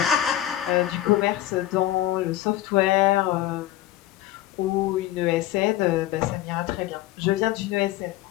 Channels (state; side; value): quieter; right; 13.9 dB